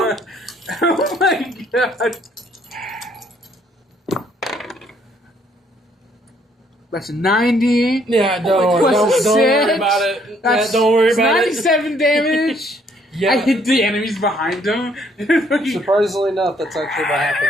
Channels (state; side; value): normal; both; correlation 0.66